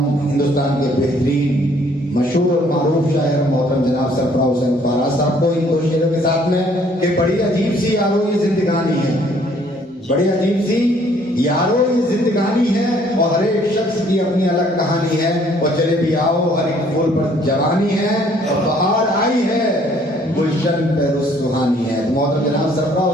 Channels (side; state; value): both; normal; correlation 0.61